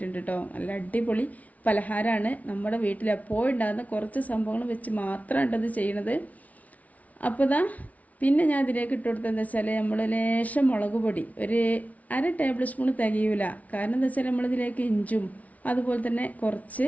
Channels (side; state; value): right; late; 0.070 ms